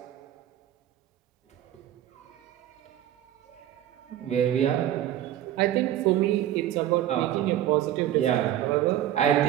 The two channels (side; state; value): left; quieter; 12.2 dB